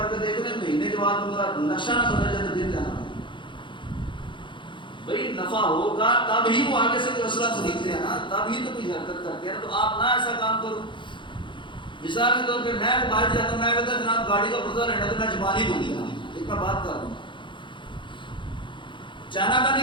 کے دیکھ لیں, مہینے کے بعد ان کا نقشہ نہ بدل جائے تو دل جانا. بھائی نفع ہوگا تب ہی وہ آگے سے کوئی اسلحہ خریدتے ہیں نا, تب ہی تو کوئی حرکت کرتے ہیں. تو آپ نہ ایسا کام کرو. مثال کے طور پہ میں باہر جاتا ہوں, میں کہتا ہوں جناب گاڑی کا پردہ لینا تو میں زبان ہی دوں گا, ایک میں بات کر رہا ہوں, چائنا کا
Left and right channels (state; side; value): late; right; 0.23 ms